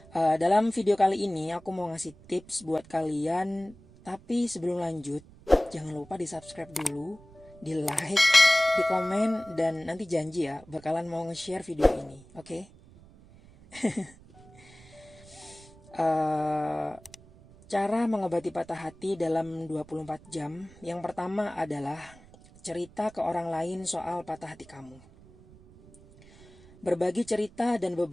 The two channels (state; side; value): noise; right; rumble, 23 dB below the sound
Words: Dalam video kali ini aku mau ngasih tips buat kalian. Tapi sebelum lanjut, jangan lupa di subscribe dulu, di like, di komen, dan nanti janji ya bakalan mau nge-share video ini, oke? Cara mengobati patah hati dalam 24 jam. Yang pertama adalah cerita ke orang lain soal patah hati kamu. Berbagi cerita dan